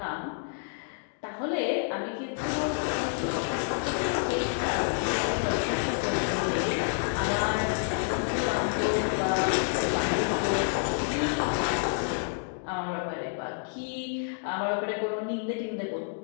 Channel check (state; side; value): silent; right; digital silence